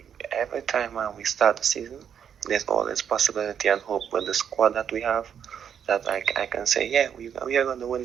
Every time we start the season, there's always possibility and hope with the squad that we have, that I can say, yeah, we are going to win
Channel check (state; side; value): quieter; left; 8.3 dB